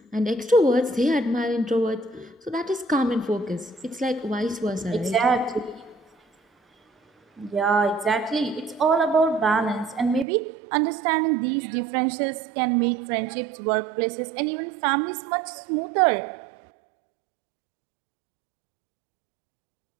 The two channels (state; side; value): drops out; left; at 10.2 s